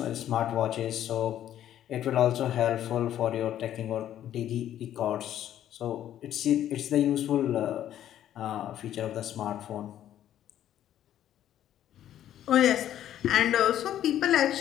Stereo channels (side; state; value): right; quieter; 11.5 dB